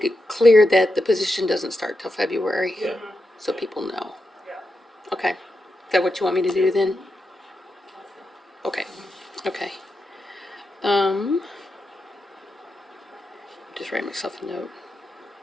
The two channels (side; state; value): both; normal; correlation 0.87